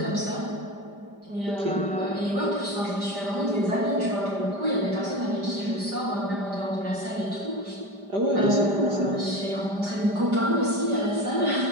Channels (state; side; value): late; left; 5.0 ms